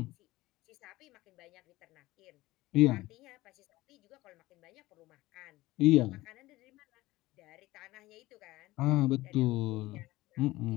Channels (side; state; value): right; quieter; 18.5 dB